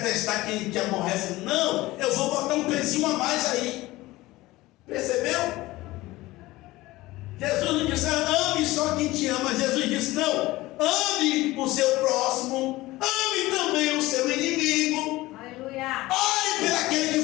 quem te aborrece. Não, eu vou botar um pezinho a mais aí. Percebeu? Jesus não disse: ame só quem te ama. Jesus disse: não, ame o seu próximo, ame também o seu inimigo. Aleluia. Ore por aquele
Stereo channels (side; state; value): right; quieter; 18.8 dB